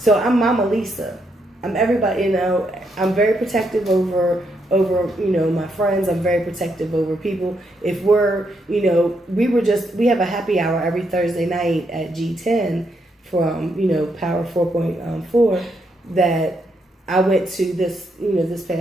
I'm Mama Lisa. I'm everybody, I'm very protective over my friends. I'm very protective over people. If we're, we have a happy hour every Thursday night at G10 from, Power 4.4 that I went to this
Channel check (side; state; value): both; normal; correlation 0.78